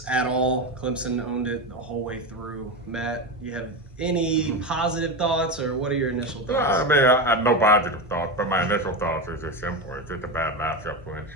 at all. Clemson owned it the whole way through. Matt, you have any positive thoughts, or what are your initial thoughts? I have no positive thoughts, but my initial thoughts is just simple. It's just a bad matchup for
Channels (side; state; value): both; normal; correlation 0.17